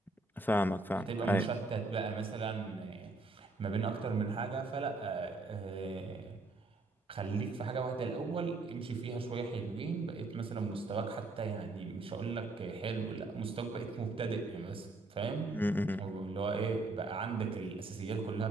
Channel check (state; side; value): quieter; left; 3.1 dB